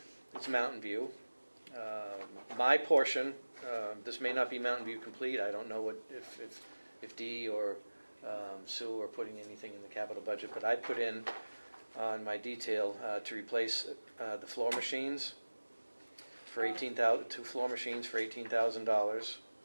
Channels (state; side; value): inverted; both; correlation -1.00